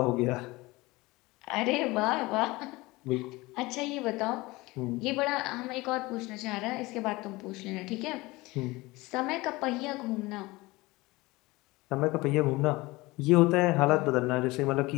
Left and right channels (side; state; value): right; quieter; 21.5 dB